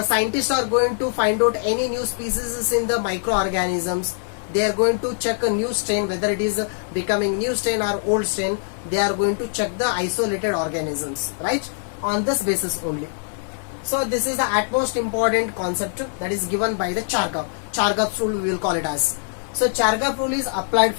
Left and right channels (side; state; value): right; silent; 59 dB below the other